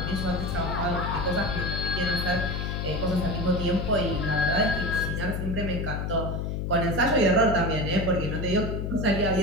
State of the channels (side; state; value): left; noise; hum, 2 dB below the sound